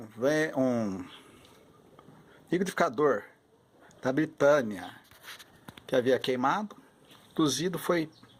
liquidificador da Britânia que havia queimado. Cozido foi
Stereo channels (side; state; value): both; identical; correlation 1.00